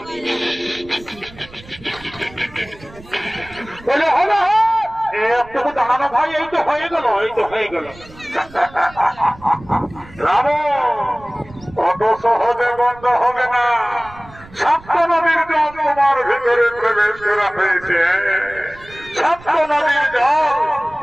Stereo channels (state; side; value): noise; right; rumble, 21 dB below the sound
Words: বলে হবে একটু দাঁড়ানো ভাই, এই তো হয়ে গেল। রাবণ কত সহজ